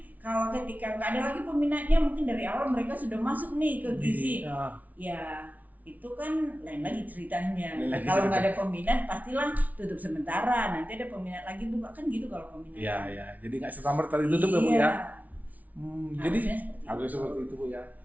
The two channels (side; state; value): left; late; 0.074 ms